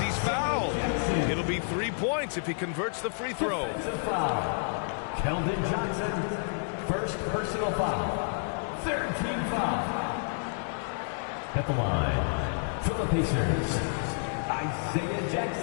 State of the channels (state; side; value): silent; right; digital silence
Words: fouled. It'll be 3 points if he converts the free throw. Keldon Johnson, first personal foul. Third team foul. At the line, for the Pacers, Isaiah